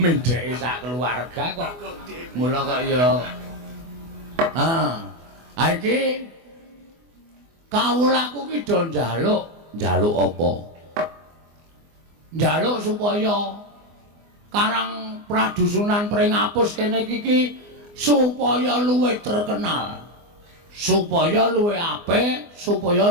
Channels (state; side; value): late; left; 24 ms